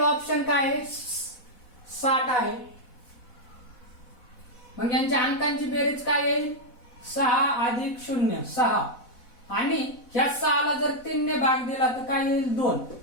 ऑप्शन काय आहे, 60 आहे. मग यांच्या अंकांची बेरीज काय येईल, 6 अधिक 0 6. आणि ह्या 6 ला जर 3 ने भाग दिला तर काय येईल, 2.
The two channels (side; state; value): right; late; 4.1 ms